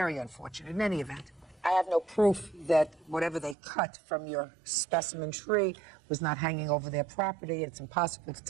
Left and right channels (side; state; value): left; drops out; at 3.6 s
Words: unfortunate. In any event, I have no proof that whatever they cut from your specimen tree was not hanging over their property. It's impossible to